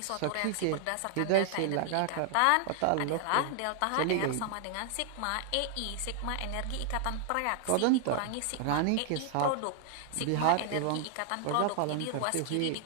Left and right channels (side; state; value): both; different; correlation 0.00